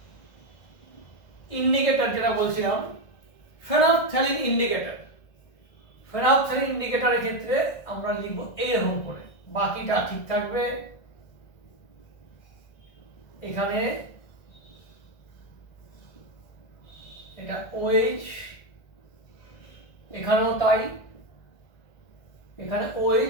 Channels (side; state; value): right; late; 1.6 ms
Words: ইন্ডিকেটর যেটা বলছিলাম, ফেনফথ্যালিন ইন্ডিকেটর, ফেনফথ্যালিন ইন্ডিকেটরের ক্ষেত্রে আমরা লিখব এইরকম করে, বাকিটা ঠিক থাকবে। এখানে এটা OH, এখানেও তাই, এখানে